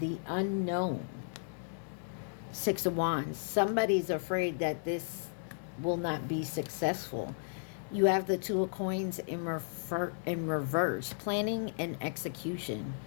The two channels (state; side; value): silent; right; digital silence